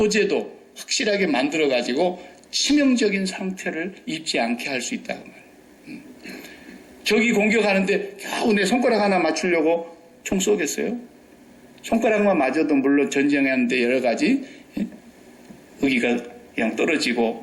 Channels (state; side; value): identical; both; correlation 1.00